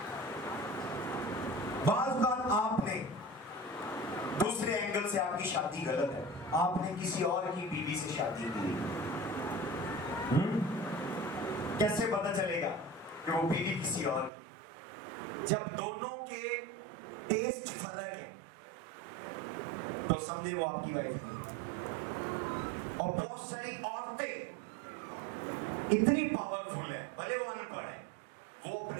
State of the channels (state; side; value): drops out; left; at 14.3 s